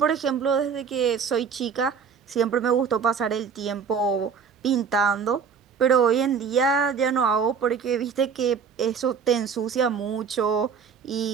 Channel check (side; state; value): left; quieter; 6.3 dB